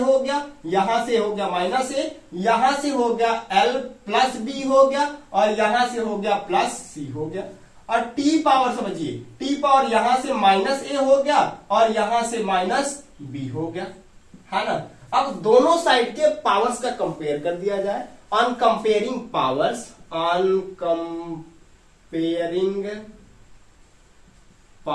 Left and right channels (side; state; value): both; identical; correlation 1.00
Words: हो गया, यहां से हो गया -a, यहां से हो गया l प्लस b हो गया, और यहां से हो गया प्लस c हो गया। और t पावर समझिए, t पावर यहां से -a हो गया और यहां से -b हो गया, है ना। अब दोनों साइड के पावर्स का कंपेयर कर दिया जाए। On comparing powers, on comparing